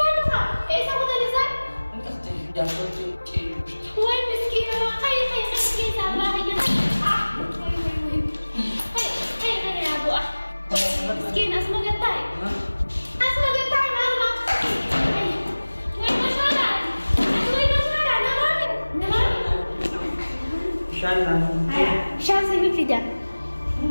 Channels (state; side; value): inverted; both; correlation -1.00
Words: apa? Sama tadi san? Entas jangan cincin. Woi, miskin orang. Hai, miskin sama aja. Hai, aku ah. Miskin asma getai. Asma getai mana? Woi, masalah. Woi, masalah. Nama. Shana. Hai, Shan sih tidak.